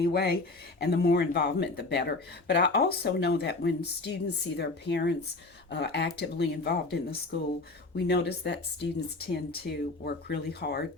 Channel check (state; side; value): quieter; right; 3.3 dB